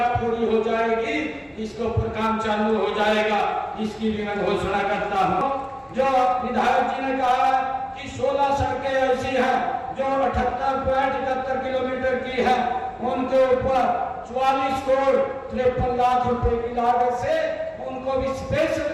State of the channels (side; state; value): both; identical; correlation 1.00